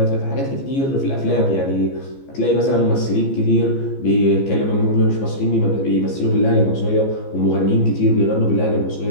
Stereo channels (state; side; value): late; right; 15 ms